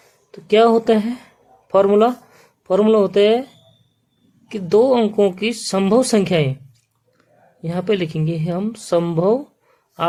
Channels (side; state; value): both; identical; correlation 1.00